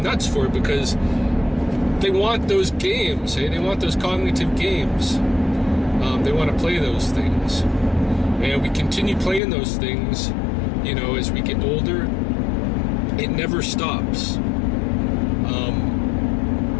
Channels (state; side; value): drops out; right; at 9.4 s